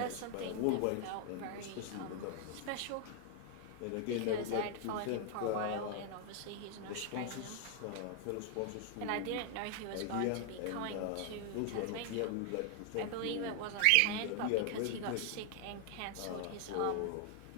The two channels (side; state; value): both; different; correlation 0.00